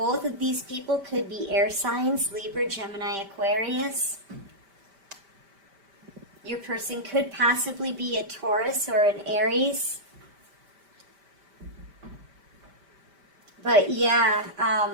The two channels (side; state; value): left; late; 5.1 ms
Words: of these people could be air signs, Libra, Gemini, Aquarius. Your person could possibly be a Taurus or an Aries. But yeah,